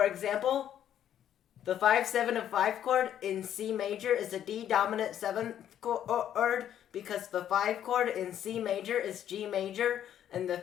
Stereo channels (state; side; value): quieter; right; 10.4 dB